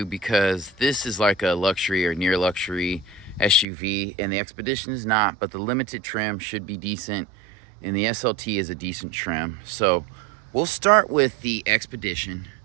because this is like a luxury or near luxury SUV and the Expedition is not, but the Limited trim should be decent and the SLT is a decent trim. So we'll start with the Expedition.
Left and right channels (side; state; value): left; drops out; at 3.7 s